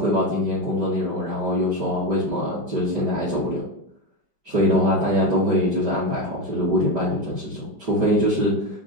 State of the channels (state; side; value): late; left; 5.1 ms